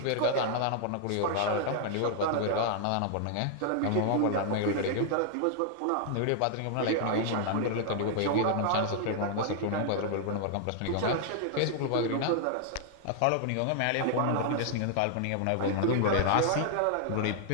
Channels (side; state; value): both; different; correlation -0.01